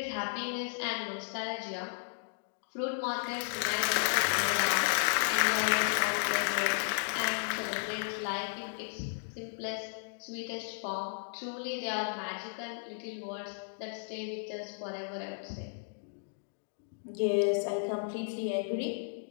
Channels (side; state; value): right; silent; digital silence